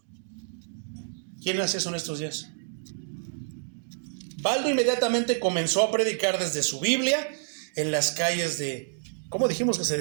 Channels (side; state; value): left; silent; digital silence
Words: ¿Quién hace eso en estos días? Baldo inmediatamente comenzó a predicar desde su Biblia en las calles de, ¿cómo dijimos que se